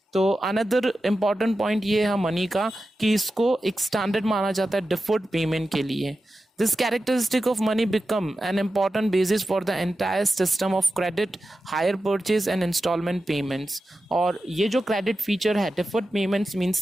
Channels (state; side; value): normal; both; correlation 0.92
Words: तो अनदर इम्पॉर्टेंट पॉइंट ये है मनी का कि इसको एक स्टैंडर्ड माना जाता है डिफर्ड पेमेंट के लिए। This characteristic of money become an important basis for the entire system of credit, hire purchase and installment payments। और ये जो credit feature है, deferred payments means